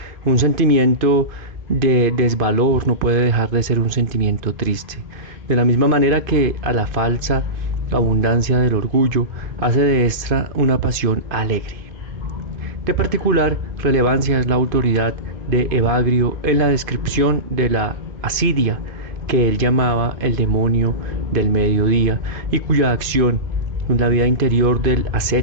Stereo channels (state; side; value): late; left; 2.5 ms